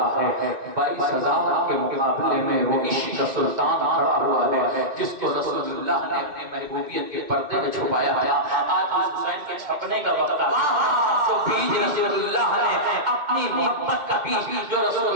ہے، 22,000 کے مقابلے میں وہ عشق کا سلطان کھڑا ہوا ہے جس کو رسول اللہ نے اپنی محبوبیت کے پردے میں چھپایا ہے۔ آج حسین کے چھپنے کا وقت آیا، جو بیج رسول اللہ نے اپنی محبت کا بیج جو رسول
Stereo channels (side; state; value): left; late; 2.2 ms